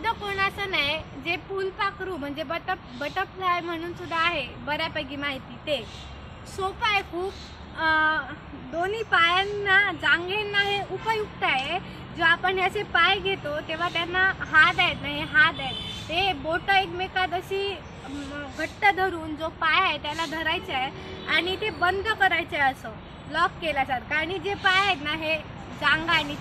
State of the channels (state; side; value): identical; both; correlation 1.00